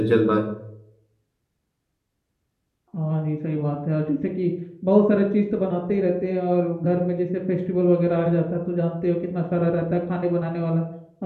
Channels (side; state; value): both; identical; correlation 1.00